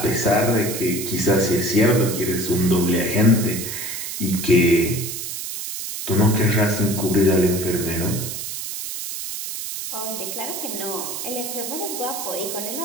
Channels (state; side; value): noise; right; hiss, 6 dB below the sound